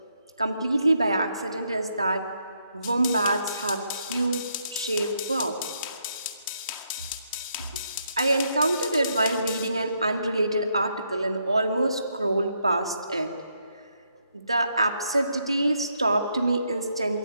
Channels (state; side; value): inverted; both; correlation -0.76